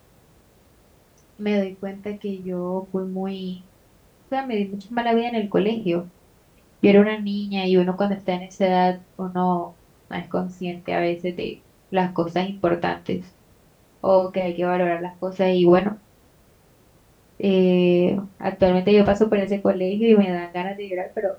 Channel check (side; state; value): both; identical; correlation 1.00